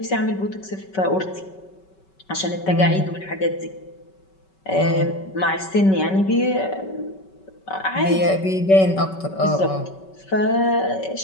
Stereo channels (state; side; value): late; right; 5.3 ms